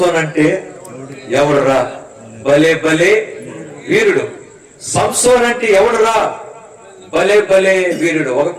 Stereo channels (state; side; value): identical; both; correlation 1.00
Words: అంటే ఎవడురా భలే భలే వీరుడు. సంసోన్ అంటే ఎవడురా భలే భలే వీరుడు. ఒక